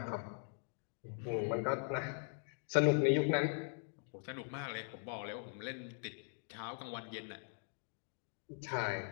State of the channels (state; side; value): silent; right; 50 dB below the other